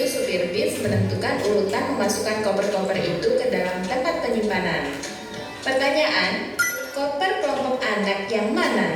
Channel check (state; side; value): identical; both; correlation 1.00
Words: supir bis menentukan urutan memasukkan koper-koper itu ke dalam tempat penyimpanan. Pertanyaan, koper kelompok anak yang mana